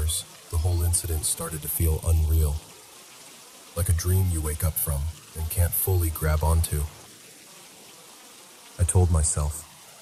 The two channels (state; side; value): identical; both; correlation 1.00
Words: the whole incident started to feel unreal. Like a dream you wake up from and can't fully grab onto. I told myself,